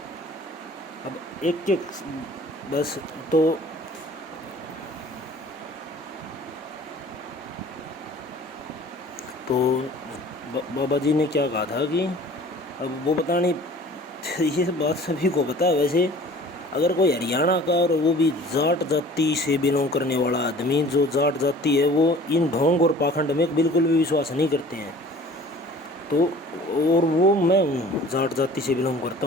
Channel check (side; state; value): both; normal; correlation 0.47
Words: अब एक एक बस तो बाबा जी ने क्या कहा था कि अब वो बतानी ये बात सभी को पता है। वैसे अगर कोई हरियाणा का और वो भी जाट जाति से बिलोंग करने वाला आदमी, जो जाट जाति है वो इन ढोंग और पाखंड में बिल्कुल भी विश्वास नहीं करते हैं, तो और वो मैं हूँ, जाट जाति से बिलोंग करता